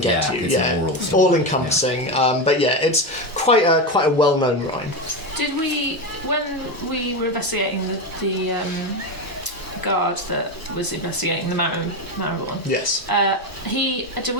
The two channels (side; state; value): both; normal; correlation 0.15